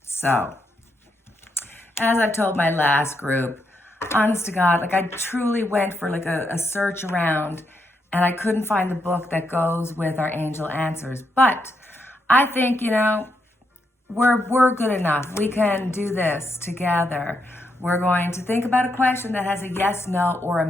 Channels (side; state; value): both; normal; correlation 0.80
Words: So, as I've told my last group, honest to God, I truly went for a search around and I couldn't find the book that goes with our angel answers. But I think, we're good enough. We can do this together. We're going to think about a question that has a yes, no, or a